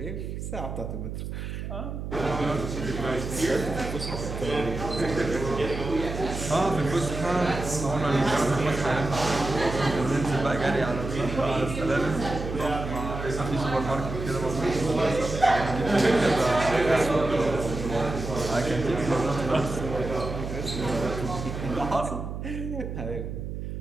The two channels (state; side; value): noise; right; hum, 6 dB below the sound